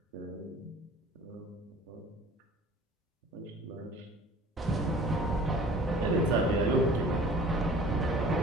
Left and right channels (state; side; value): normal; both; correlation 0.47